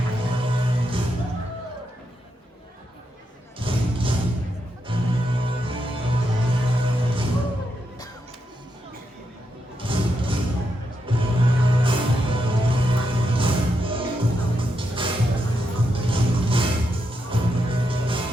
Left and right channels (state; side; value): normal; both; correlation 0.83